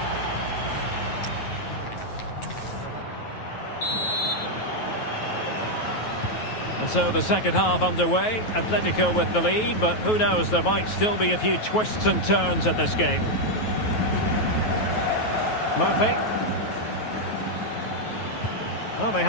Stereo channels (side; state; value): right; late; 9.3 ms